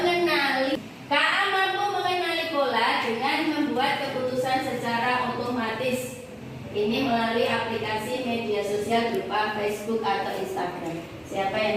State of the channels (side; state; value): both; identical; correlation 1.00